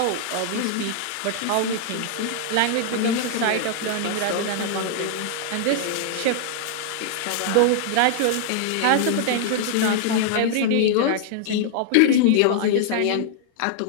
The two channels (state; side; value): different; both; correlation 0.00